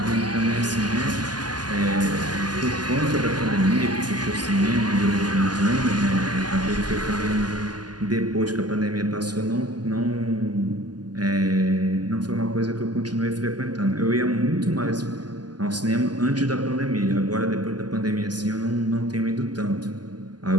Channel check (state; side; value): late; left; 0.70 ms